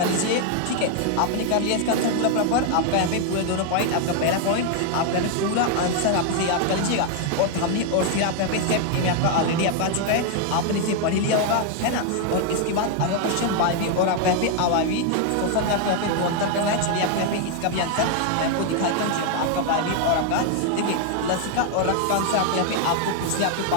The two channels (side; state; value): both; different; correlation 0.00